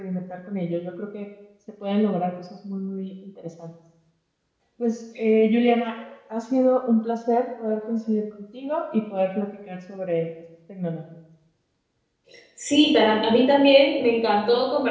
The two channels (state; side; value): identical; both; correlation 1.00